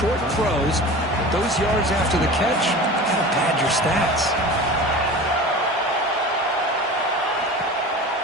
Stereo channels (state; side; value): normal; both; correlation 0.35